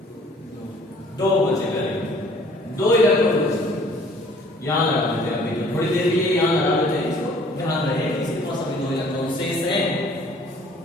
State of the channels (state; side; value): normal; both; correlation 0.55